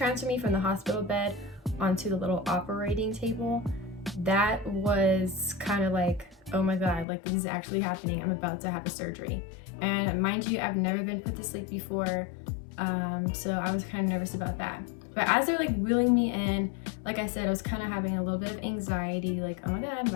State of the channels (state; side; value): drops out; right; at 7.1 s